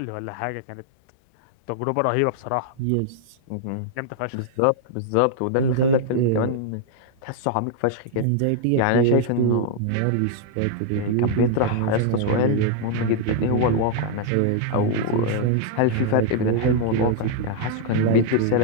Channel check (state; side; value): different; both; correlation -0.01